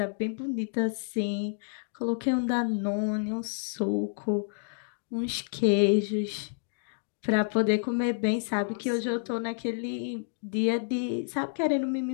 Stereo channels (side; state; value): right; silent; digital silence